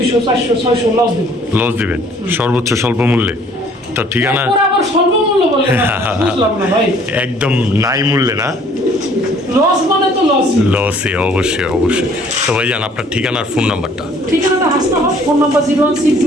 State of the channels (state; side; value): normal; both; correlation 0.57